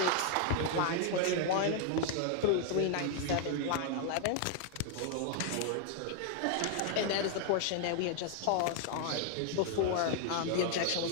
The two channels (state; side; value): different; both; correlation 0.00